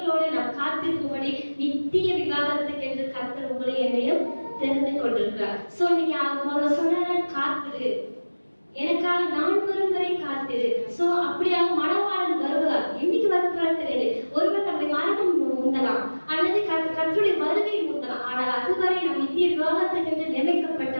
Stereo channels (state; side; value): inverted; both; correlation -1.00